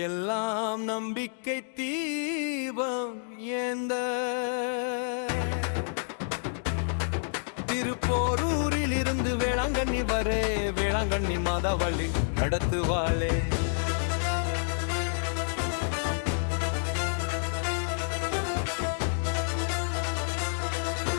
நம்பிக்கை தீபம் ஏந்த திருப்போரூரில் இருந்து வேளாங்கண்ணி வரே வேளாங்கண்ணி மாதாவள்ளி நடத்துவாளே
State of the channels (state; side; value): silent; right; digital silence